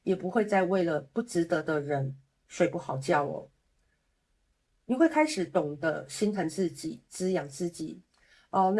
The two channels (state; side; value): identical; both; correlation 1.00